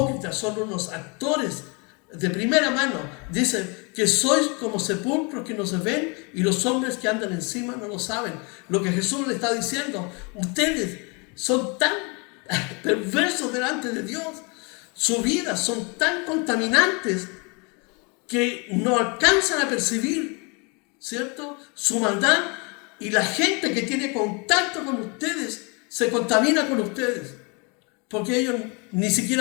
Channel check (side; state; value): right; quieter; 31.5 dB